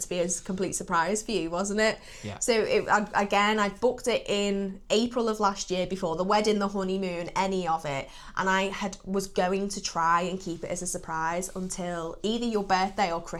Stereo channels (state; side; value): identical; both; correlation 1.00